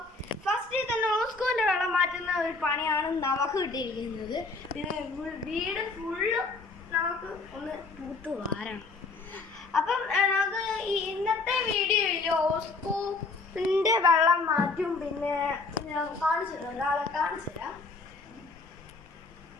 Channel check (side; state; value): right; quieter; 3.8 dB